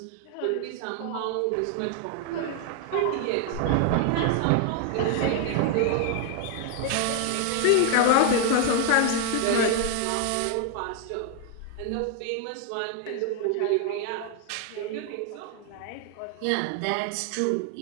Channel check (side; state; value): both; different; correlation 0.01